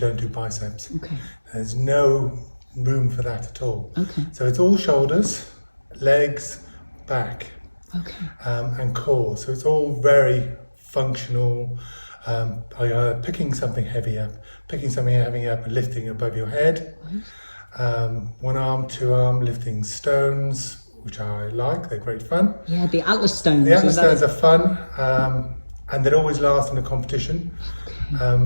do biceps. Okay. There's no room for that at all. Okay. So it's all shoulders, legs, back, Okay. and core. So it's all very functional. Picking something heavy up, and lifting above your head. One arm, 2 arm, lifting stones, which I like, they're great fun. Yeah, the Atlas stones. The Atlas stones are fun, and they always last in a competition,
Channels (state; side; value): inverted; both; correlation -1.00